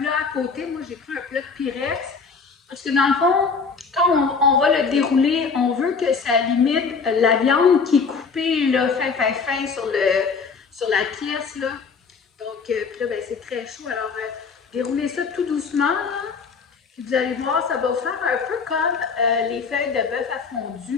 à côté. Moi, j'ai pris un plat de Pyrex. Parce que dans le fond, quand on va le dérouler, on veut que ça limite la viande qui est coupée là, fin sur la pièce. Là. Donc, puis là, ben, c'est très chaud. Alors, déroulez ça tout doucement. Là. Puis vous allez voir, ça va vous faire un peu comme les feuilles de bœuf à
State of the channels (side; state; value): right; quieter; 5.2 dB